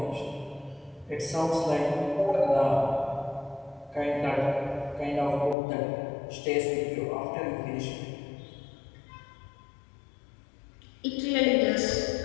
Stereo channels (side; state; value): right; drops out; at 5.6 s